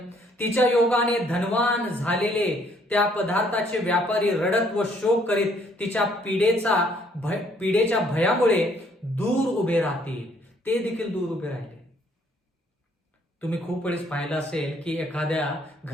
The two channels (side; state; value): both; normal; correlation 0.65